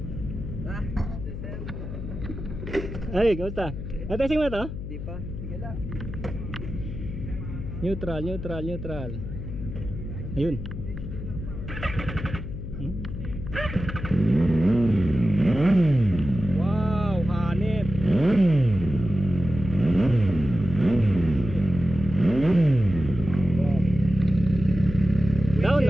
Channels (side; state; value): left; noise; hum, 8 dB below the sound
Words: Ay, kamusta? Natesting mo na to? Di pa? Sige lang. Neutral. Ayun. Wow, hanip. Down,